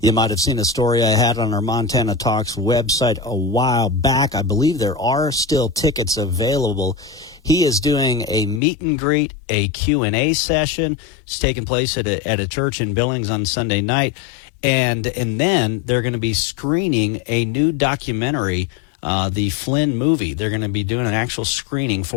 might have seen a story I had on our Montana Talks website a while back. I believe there are still tickets available. He is doing a meet and greet, a Q&A session. It's taking place at a church in Billings on Sunday night. And then they're going to be screening a new documentary, the Flynn movie. They're going to be doing an actual screening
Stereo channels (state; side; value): drops out; right; at 8.6 s